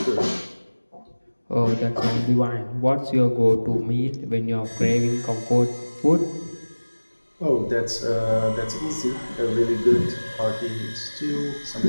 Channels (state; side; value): inverted; both; correlation -1.00